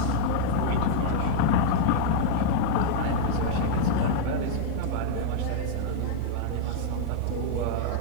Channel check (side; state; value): both; different; correlation 0.00